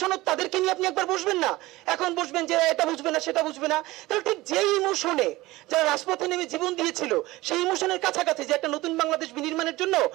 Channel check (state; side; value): quieter; left; 19.1 dB